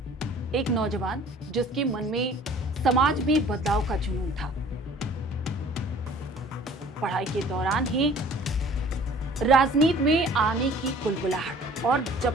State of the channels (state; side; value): normal; both; correlation 0.50